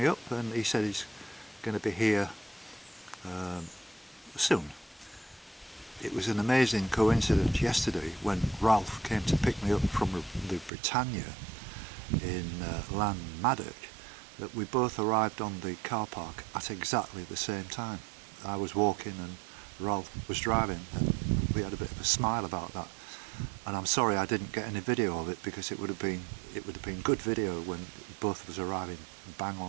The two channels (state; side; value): drops out; left; at 10.7 s